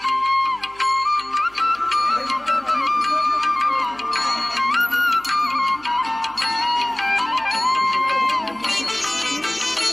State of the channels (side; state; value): right; noise; hum, 26 dB below the sound